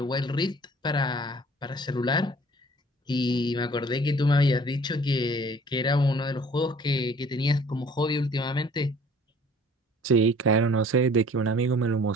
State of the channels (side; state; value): both; normal; correlation 0.52